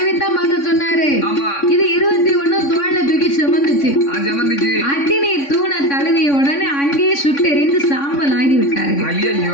பார்க்க சொன்னாரு. ஆமா. இது 21 தோல்ல தூக்கி சுமந்துச்சு. ஜமந்துச்சு. அக்கினி தூணை தழுவிய உடனே அங்கேயே சுட்டெரிந்து சாம்பல் ஆகி விட்டார்கள்.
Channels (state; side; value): late; right; 3.6 ms